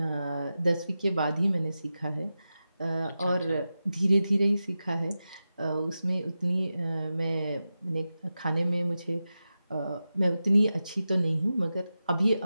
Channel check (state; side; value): inverted; both; correlation -0.92